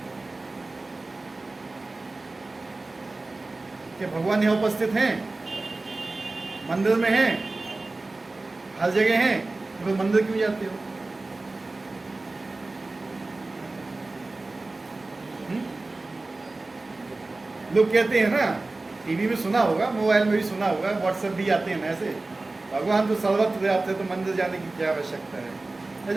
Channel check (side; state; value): left; quieter; 3.2 dB